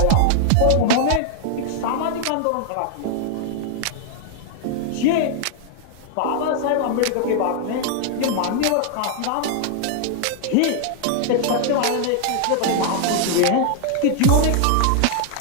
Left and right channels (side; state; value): both; different; correlation 0.00